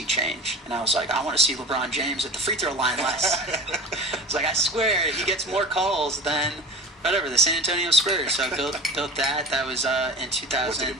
change? And I was like, I want to see LeBron James at the free throw line less. It's like, I swear he gets more calls than whatever, the San Antonio Spurs. So I built that. That was in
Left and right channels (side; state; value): both; normal; correlation 0.34